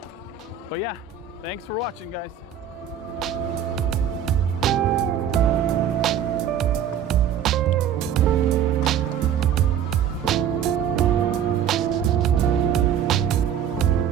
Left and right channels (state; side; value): quieter; left; 9.0 dB